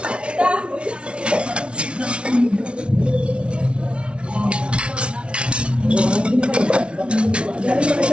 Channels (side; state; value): left; late; 0.058 ms